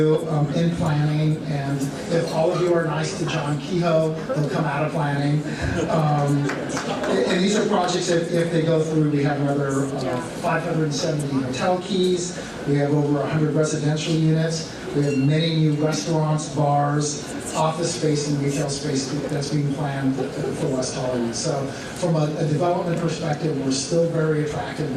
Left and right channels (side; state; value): both; identical; correlation 1.00